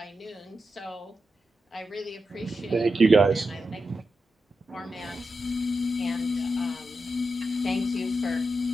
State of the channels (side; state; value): both; normal; correlation 0.89